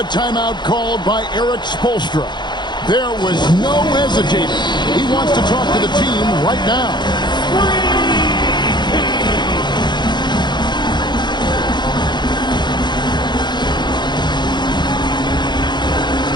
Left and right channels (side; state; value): right; late; 0.21 ms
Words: timeout called by Eric Spoelstra. There was no hesitating. He wants to talk to the team right now.